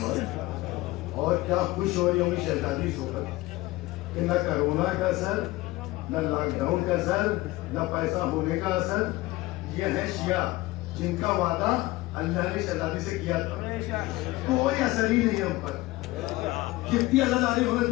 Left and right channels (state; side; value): quieter; right; 19.4 dB